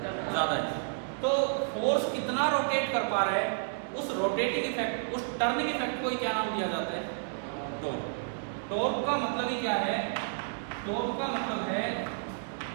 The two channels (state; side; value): silent; left; digital silence